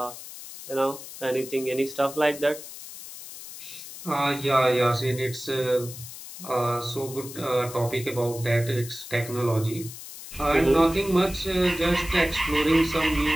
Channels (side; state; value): left; noise; hiss, 13 dB below the sound